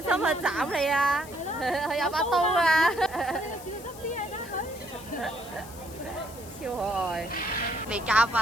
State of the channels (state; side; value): noise; left; hiss, 18 dB below the sound